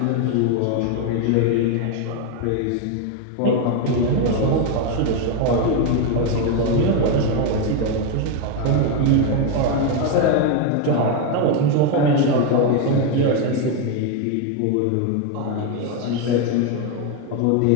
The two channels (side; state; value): both; different; correlation 0.02